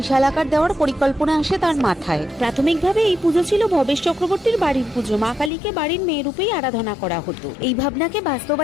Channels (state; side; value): drops out; right; at 5.5 s